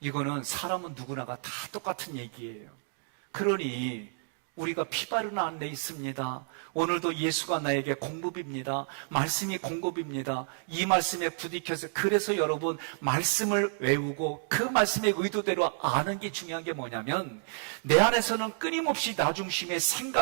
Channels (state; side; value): silent; left; 58 dB below the other